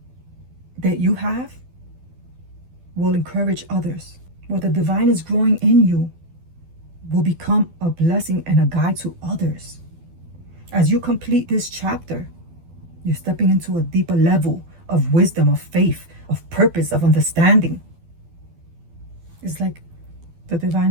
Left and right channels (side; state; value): left; late; 12 ms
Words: that you have will encourage others. What the divine is growing in you will become a blessing and a guide to others. As you complete this chapter, you're stepping into a deeper level of wisdom, of faith, of purpose, of understanding. It's like the divine